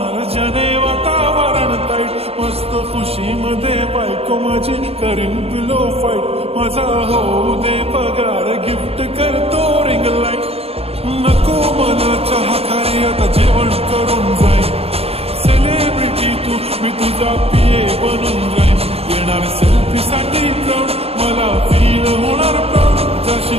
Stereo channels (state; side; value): late; left; 0.29 ms